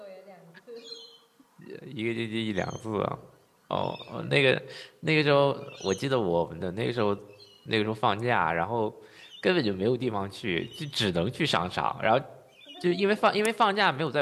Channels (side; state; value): both; identical; correlation 1.00